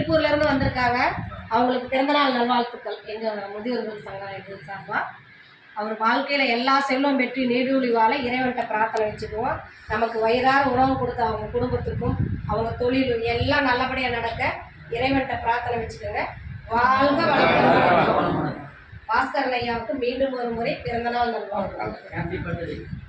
இருந்து வந்திருக்காங்க. அவங்களுக்கு பிறந்தநாள் நல்வாழ்த்துக்கள் எங்க முதியோர்கள் சங்கம் இது சார்பா. அவர் வாழ்க்கையில எல்லா செல்வம் பெற்று நீடூழி வாழ இறைவன்கிட்ட பிரார்த்தனை வச்சுக்குவோம். நமக்கு வயிறார உணவு கொடுத்த அவங்க குடும்பத்துக்கும் அவங்க தொழில் எல்லாம் நல்லபடியா நடக்க இறைவன்கிட்ட பிரார்த்தனை வச்சுக்கோங்க. வாழ்க வளமுடன். பாஸ்கரன் ஐயாவுக்கு மீண்டும் ஒரு முறை பிறந்தநாள் நல்வாழ்த்துக்கள்.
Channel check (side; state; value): both; identical; correlation 1.00